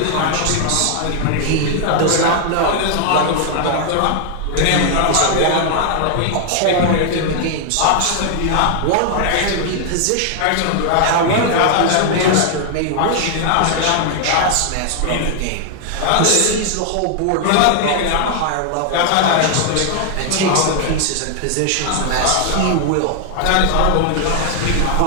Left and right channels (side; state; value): both; different; correlation 0.00